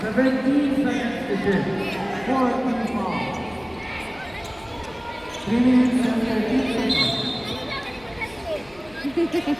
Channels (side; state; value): left; noise; hum, 24 dB below the sound